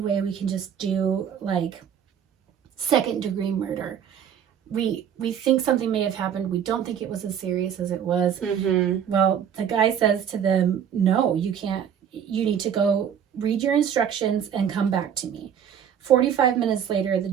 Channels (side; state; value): left; quieter; 8.6 dB